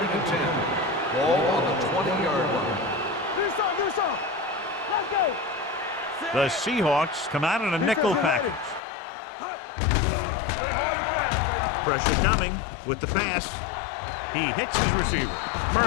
and 10. Ball on the 20-yard line. Do some. Let's go. The Seahawks come out in a nickel package. Keep the throttle down. Play hard and fast, baby. Pressure coming with the pass. He hits his receiver.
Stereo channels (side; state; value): right; drops out; at 8.8 s